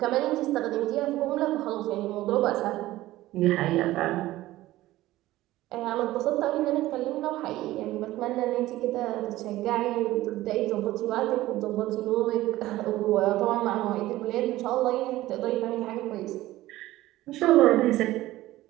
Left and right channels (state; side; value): quieter; left; 16.3 dB